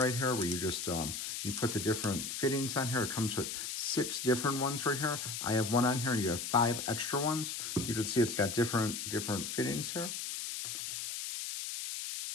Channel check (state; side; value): noise; left; hiss, 4 dB below the sound